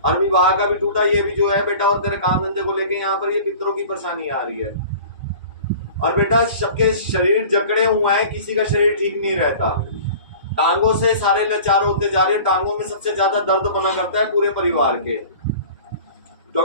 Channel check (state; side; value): inverted; both; correlation -0.42